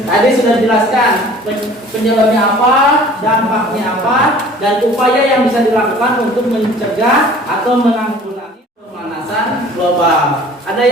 Tadi sudah dijelaskan penyebabnya apa, dampaknya apa, dan upaya yang bisa dilakukan untuk mencegah atau menanggulangi pemanasan global. Ada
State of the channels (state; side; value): normal; both; correlation 0.49